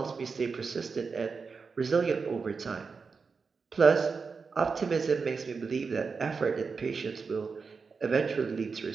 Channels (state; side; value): quieter; left; 5.0 dB